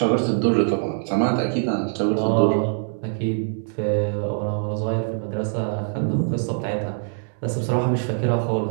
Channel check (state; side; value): silent; left; digital silence